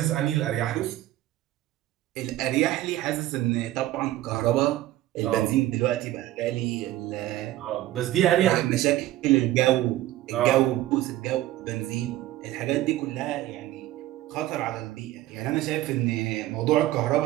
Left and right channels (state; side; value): quieter; left; 15.1 dB